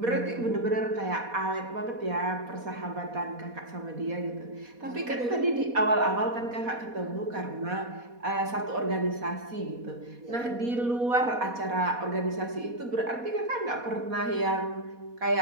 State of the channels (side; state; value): left; late; 4.2 ms